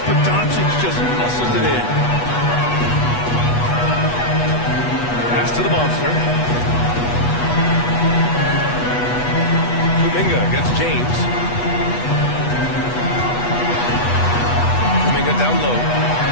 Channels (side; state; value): right; late; 8.2 ms